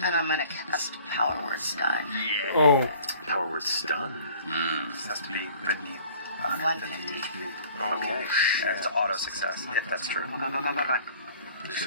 I'm gonna cast Power Word Stun. Oh. Power word stun. This has to be beneath 150. HP. Okay. And it's auto success, if that's true. He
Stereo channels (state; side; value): inverted; both; correlation -0.50